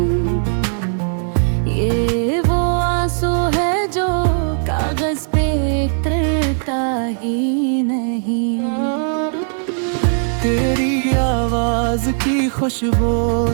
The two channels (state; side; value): silent; left; digital silence